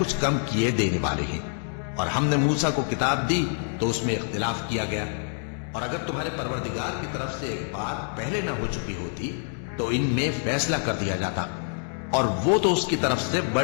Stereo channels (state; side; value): silent; right; 61 dB below the other